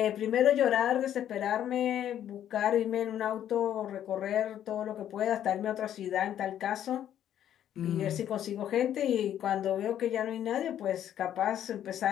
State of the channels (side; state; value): right; quieter; 10.7 dB